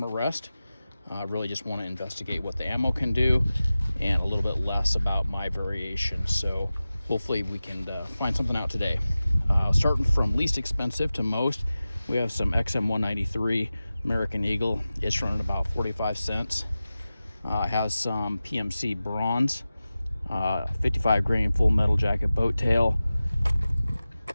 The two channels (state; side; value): inverted; both; correlation -0.95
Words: a rest. Really just want to investigate what the ammo can do and a little bit less about my variation. So hopefully we can find something out today. Starting from least expensive to most, we have some XM193 American Eagle. It's running about 45 cents. Has some PMC bronze, 55 grain full metal jacket boat tail.